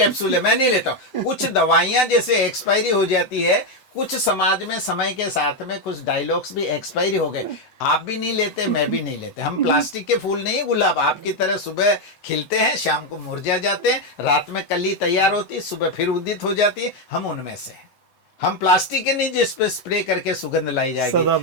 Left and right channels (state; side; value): late; right; 7.9 ms